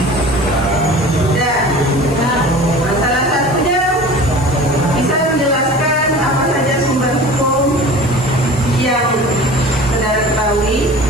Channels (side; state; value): left; noise; hiss, 16 dB below the sound